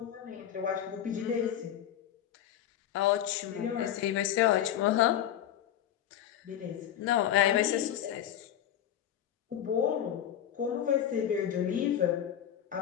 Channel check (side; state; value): right; quieter; 10.7 dB